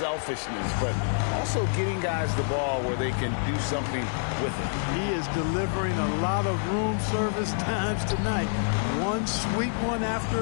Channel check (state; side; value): silent; right; 60 dB below the other